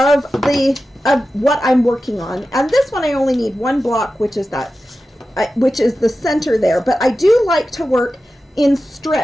what I'm working on. And this one I only need one block, which is the center there, but I do like to work in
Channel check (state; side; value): normal; both; correlation 0.93